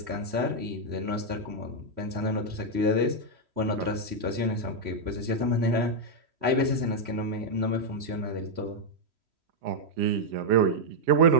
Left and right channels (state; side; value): late; left; 3.1 ms